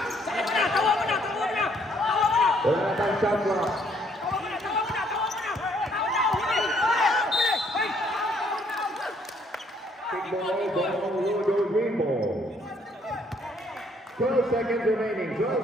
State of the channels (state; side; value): normal; both; correlation 0.66